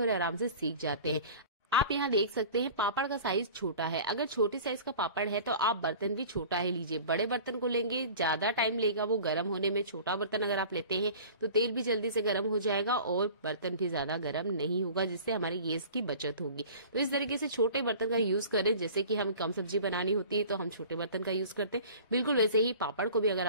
आराम से सीख जाते हैं। आप यहाँ देख सकते हैं पापड़ का साइज छोटा है। अगर छोटे साइज का पापड़ है तो आप बर्तन भी छोटा ही लीजिए। बड़े बर्तन को लेंगे ज्यादा टाइम लेगा वो गर्म होने में। छोटा बर्तन अगर आप लेते हैं तो तेल भी जल्दी से गर्म हो जाएगा और बर्तन भी ज्यादा गर्म नहीं होगा, जिससे हमारी गैस की बचत होगी। तो इस तरीके से छोटे बर्तन का यूज करें। जैसे कि हमें कम सब्जी बनानी होती है तो हम छोटे बर्तन का यूज करते हैं, बिल्कुल वैसे ही पापड़ को भी अगर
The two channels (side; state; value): both; inverted; correlation -0.42